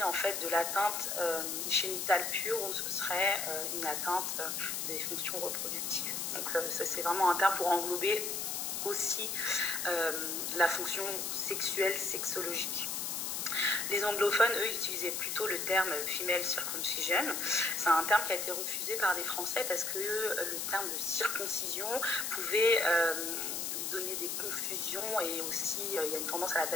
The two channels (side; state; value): left; noise; hiss, 2 dB below the sound